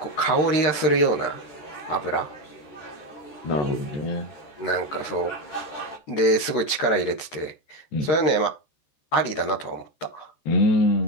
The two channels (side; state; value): right; late; 13 ms